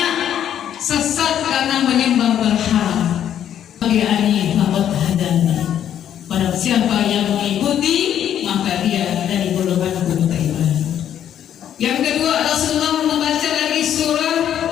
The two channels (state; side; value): quieter; right; 10.1 dB